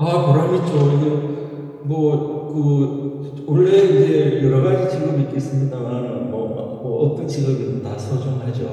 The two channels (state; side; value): identical; both; correlation 1.00